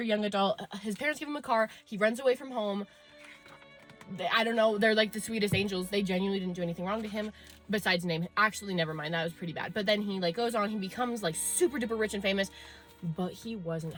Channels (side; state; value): both; identical; correlation 1.00